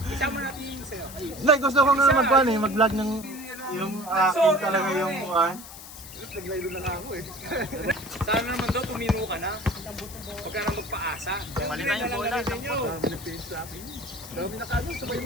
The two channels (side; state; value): left; noise; hiss, 14 dB below the sound